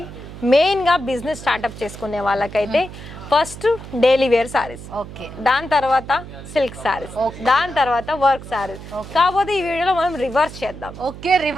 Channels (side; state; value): right; noise; hum, 13 dB below the sound